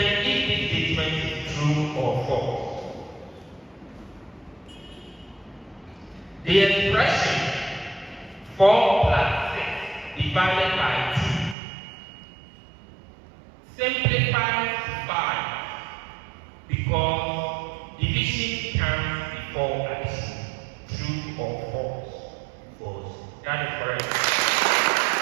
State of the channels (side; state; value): left; drops out; at 11.6 s